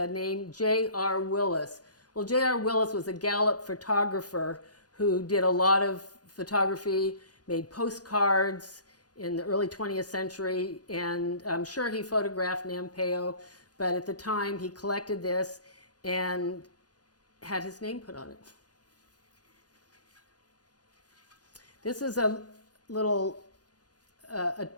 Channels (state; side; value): late; right; 0.68 ms